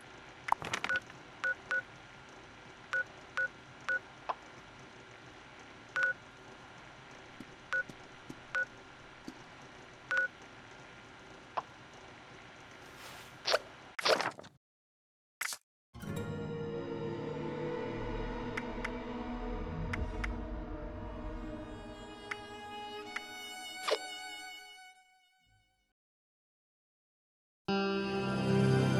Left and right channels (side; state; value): both; identical; correlation 1.00